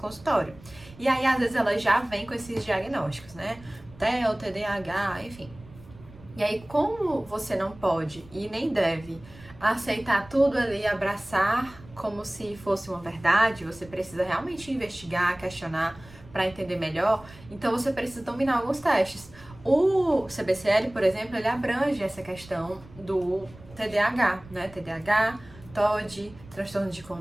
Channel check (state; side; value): noise; right; rumble, 21 dB below the sound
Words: E aí, às vezes, elas já vêm com esses diagnósticos, né? TEA, TDAH, enfim. E aí, como você não pode e nem deve aceitar tudo ali, abraçar como se fosse uma verdade, você precisa realmente investigar, questionar para entender melhor, então você precisa dominar alguns testes. O CBCL, por exemplo, ele abrange essa questão do TDAH, né? TDAH, TOD, transtorno de